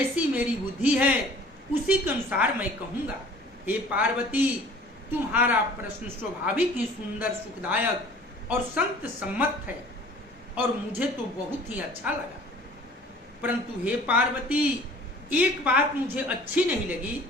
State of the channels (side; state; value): both; normal; correlation 0.49